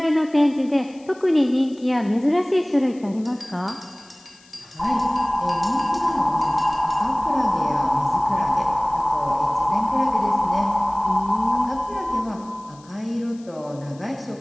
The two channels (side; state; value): left; noise; hiss, 27 dB below the sound